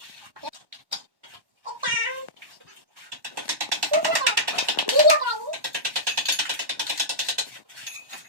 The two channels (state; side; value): late; left; 1.1 ms